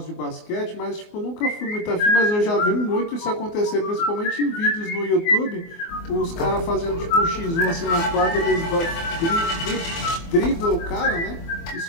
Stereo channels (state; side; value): late; right; 24 ms